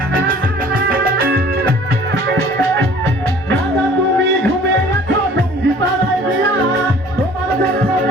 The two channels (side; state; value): both; normal; correlation 0.51